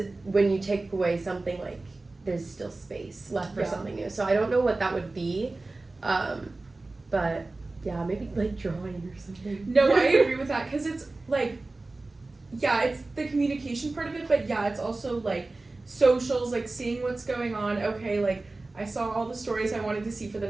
when you take away something, like there's still space left for something new. So I don't know what that would be, but yeah, maybe like drawing or something. No, I agree with that because it's like, yeah, it's the communication part of it, but yeah, it's also like socials, like seeing what's going on. Okay, like I saw all the stories I wanted to see for the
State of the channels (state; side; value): quieter; left; 3.2 dB